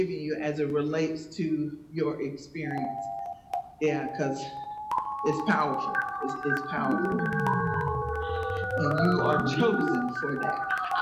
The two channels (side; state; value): both; identical; correlation 1.00